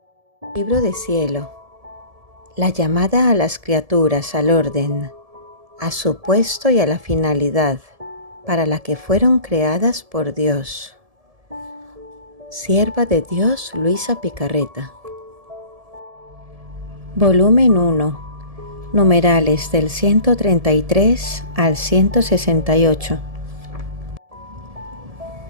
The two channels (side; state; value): left; late; 1.7 ms